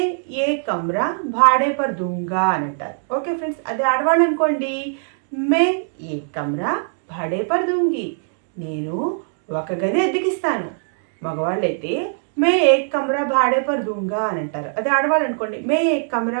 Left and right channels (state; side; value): silent; left; digital silence